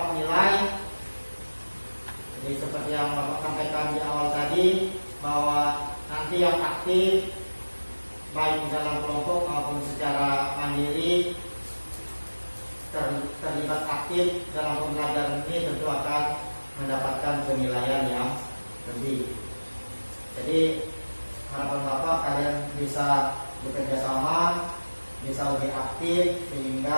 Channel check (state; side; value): inverted; both; correlation -1.00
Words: nilai. Jadi seperti yang Bapak sampaikan di awal tadi, bahwa nanti yang aktif baik di dalam kelompok maupun secara mandiri terlibat aktif dalam pembelajaran ini tentu akan mendapatkan penilaian yang lebih. Jadi harapan Bapak kalian bisa bekerja sama, bisa lebih aktif